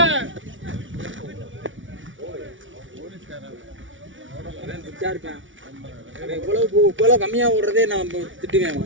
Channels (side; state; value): left; late; 0.56 ms